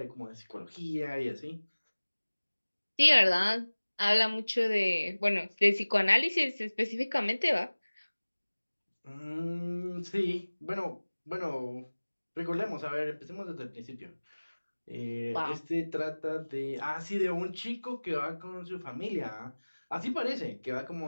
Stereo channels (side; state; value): both; inverted; correlation -1.00